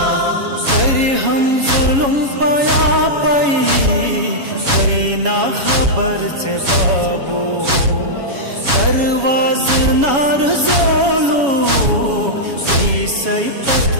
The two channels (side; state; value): left; late; 7.2 ms